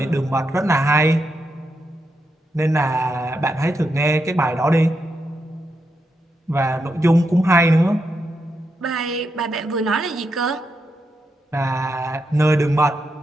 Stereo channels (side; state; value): both; normal; correlation 0.83